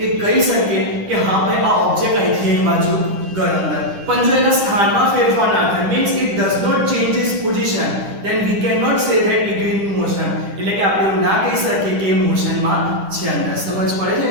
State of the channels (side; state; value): left; late; 10 ms